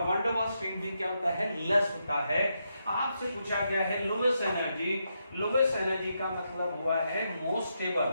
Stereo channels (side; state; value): both; inverted; correlation -0.82